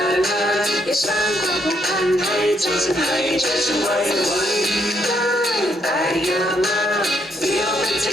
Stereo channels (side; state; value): both; normal; correlation 0.74